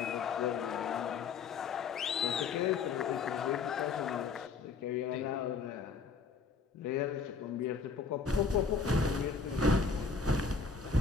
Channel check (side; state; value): right; quieter; 5.0 dB